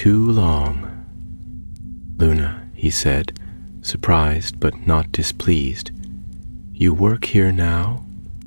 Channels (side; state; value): both; inverted; correlation -1.00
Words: long." "Luna," he said, surprised but not displeased. "You work here now?"